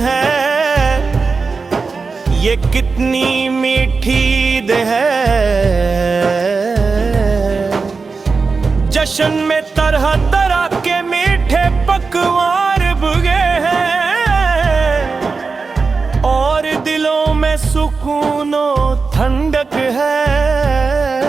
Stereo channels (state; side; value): quieter; left; 4.5 dB